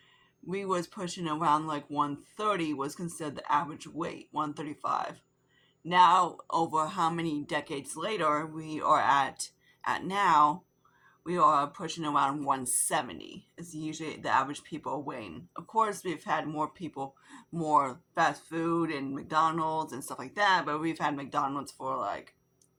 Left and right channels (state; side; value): identical; both; correlation 1.00